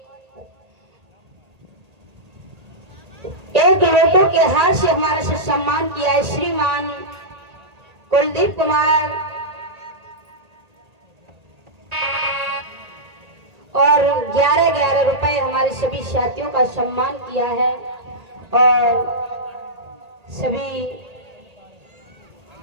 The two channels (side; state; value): left; late; 1.8 ms